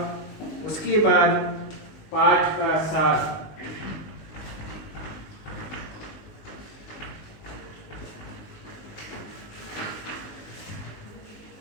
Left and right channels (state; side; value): late; right; 19 ms